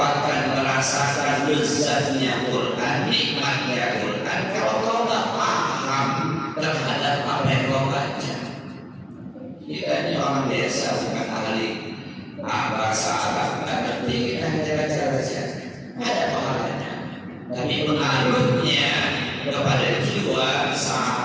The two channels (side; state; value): both; identical; correlation 1.00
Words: merasakan lezatnya Quran, nikmatnya Quran kalau kau nggak paham terhadap apa yang kau baca. Kita ini orang biasa, bukan ahli bahasa Arab, nggak ngerti, kita hanya baca-baca, ada pahalanya. Tapi pengaruhnya kepada jiwa